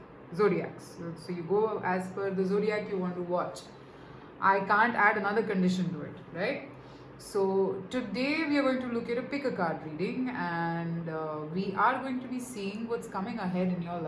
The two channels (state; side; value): identical; both; correlation 1.00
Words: zodiacs. So you go as per the zodiac you want to watch. I can't add another condition to it, right? So today we are going to look at a pick a card reading, and we are going to be seeing what's coming ahead in your